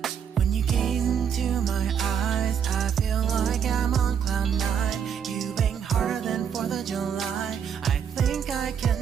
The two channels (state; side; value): quieter; left; 7.8 dB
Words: When you gaze into my eyes, I feel like I'm on cloud nine. You bang harder than 4th of July. I think I can